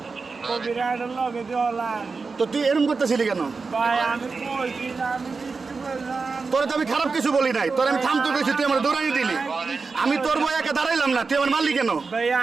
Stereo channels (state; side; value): quieter; left; 4.5 dB